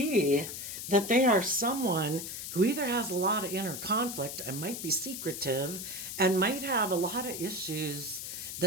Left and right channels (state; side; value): noise; left; hiss, 7 dB below the sound